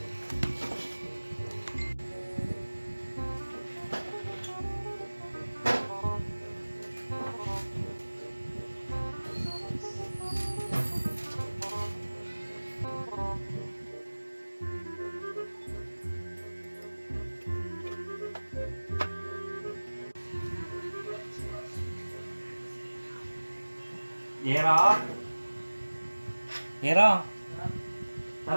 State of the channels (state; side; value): inverted; both; correlation -1.00